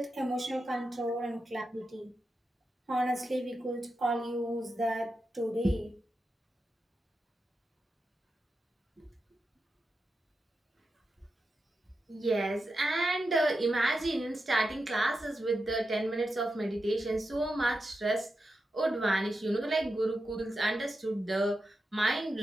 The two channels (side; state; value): both; normal; correlation 0.89